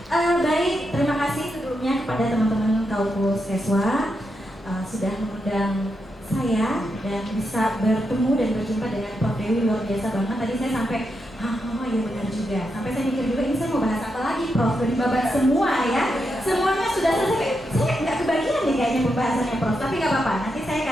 Baik, terima kasih sebelumnya kepada teman-teman Kaukus Keswa sudah mengundang saya dan bisa bertemu dan berjumpa dengan Prof. Dewi, luar biasa banget. Tadi saya sampai oh iya benar juga. Sampai saya mikir juga ini saya mau bahas apa lagi, Prof. Dari babat semua ya. Semuanya sudah selesai. Saya nggak kebagian nih kayaknya pembahasannya, Prof. Tapi nggak apa-apa. Nanti saya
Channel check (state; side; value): normal; both; correlation 0.84